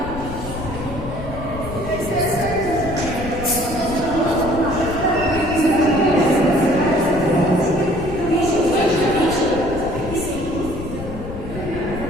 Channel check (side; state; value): left; noise; rumble, 9 dB below the sound